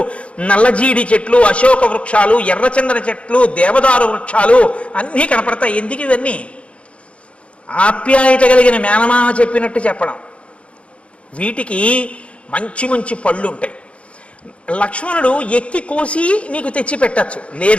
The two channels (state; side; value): late; right; 0.061 ms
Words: నల్లజీడి చెట్లు, అశోక వృక్షాలు, ఎర్రచందన చెట్లు, దేవదారు వృక్షాలు అన్నీ కనపడతాయి. ఎందుకు ఇవన్నీ? ఆప్యాయత కలిగిన మేనమామ చెప్పినట్టు చెప్పడం. వీటికి మంచి మంచి పళ్ళు ఉంటాయి. లక్ష్మణుడు ఎక్కి కోసి నీకు తెచ్చి పెట్టచ్చు,